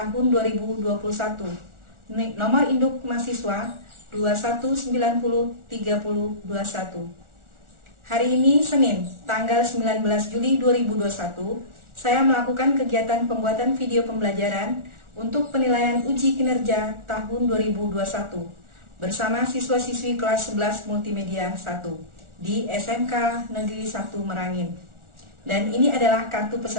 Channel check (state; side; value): late; left; 1.4 ms